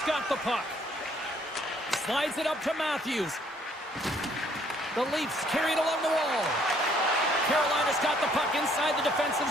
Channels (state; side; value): normal; both; correlation 0.64